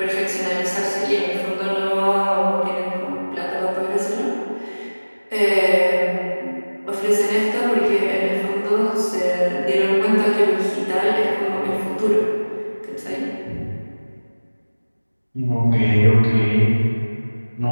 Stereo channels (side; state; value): both; inverted; correlation -1.00